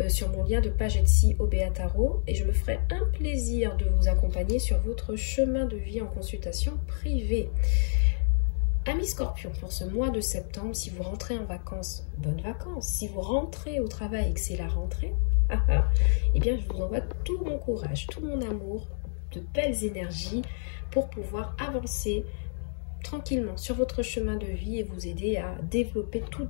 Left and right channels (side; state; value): right; silent; 59 dB below the other